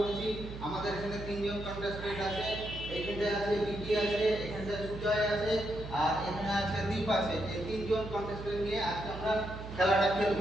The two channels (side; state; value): right; noise; hum, 10 dB below the sound